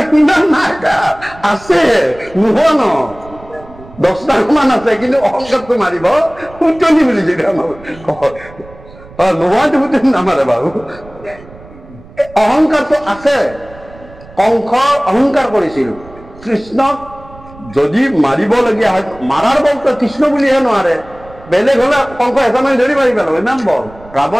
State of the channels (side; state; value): right; noise; rumble, 21 dB below the sound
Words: কিমান নাই আছে, নোহোৱা ন 10 লাখ মান আছে, কিন্তু অহংকাৰটো মাৰিব কুটনি বুলি যদি আমাৰ নোহোৱাটো কুটনি নামাৰে বাৰু। অহংকাৰটো আছে। কংস অহংকাৰ কৰিছিল। কৃষ্ণক যদি মাৰিবলগীয়া হয়, মাৰাৰ বলটো কৃষ্ণ বুলিহে নোৱাৰে, বেলেগ হলে কংস এটা মাৰি ধৰি মাৰি পেলাব, ইমান বল।